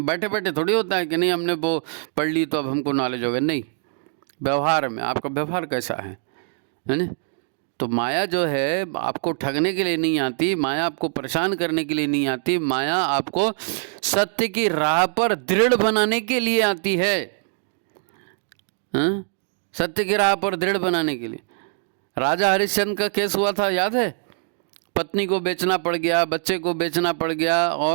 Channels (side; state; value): left; silent; 63 dB below the other